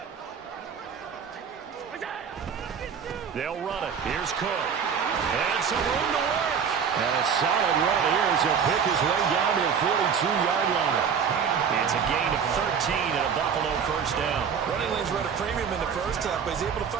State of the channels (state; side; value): quieter; left; 6.9 dB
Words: They'll run it. Here's Cook. And some room to work. And a solid run here as he'll pick his way down to the 42-yard line. It's a gain of 13 and a Buffalo 1st down. Running lanes run a premium in the first half, but he's able to